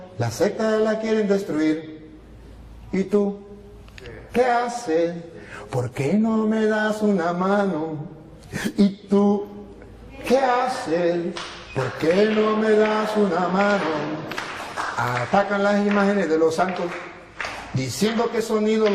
la secta la quieren destruir. ¿Y tú? ¿Qué haces? ¿Por qué no me das una mano? ¿Y tú? ¿Qué haces? ¿Por qué no me das una mano? Atacan las imágenes de los santos, diciendo que son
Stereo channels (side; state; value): both; identical; correlation 1.00